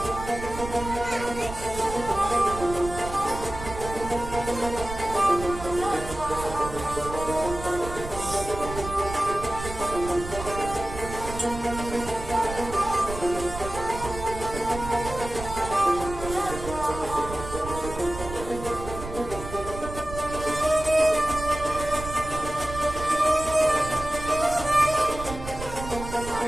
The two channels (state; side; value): noise; right; rumble, 10 dB below the sound